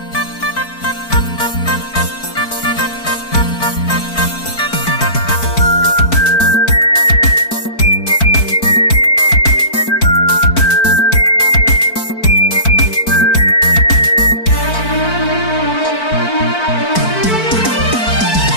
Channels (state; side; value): late; right; 4.5 ms